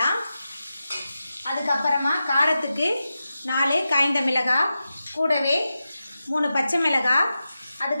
அதுக்கப்புறமா காரத்துக்கு 4 காய்ந்த மிளகாய், கூடவே 3 பச்சை மிளகாய்,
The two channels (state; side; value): inverted; both; correlation -0.91